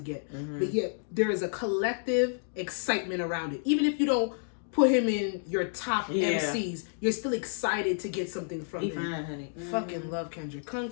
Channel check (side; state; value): right; silent; digital silence